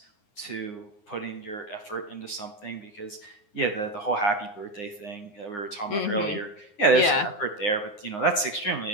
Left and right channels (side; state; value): right; late; 9.7 ms